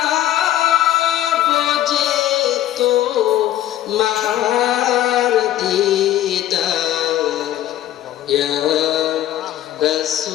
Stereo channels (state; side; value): quieter; right; 12.9 dB